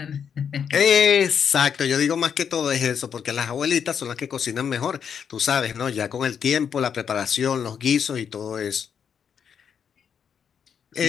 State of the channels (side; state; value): right; quieter; 7.5 dB